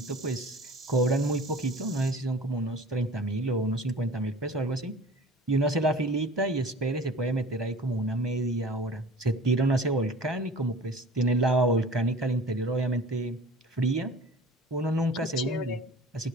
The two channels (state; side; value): normal; both; correlation 0.42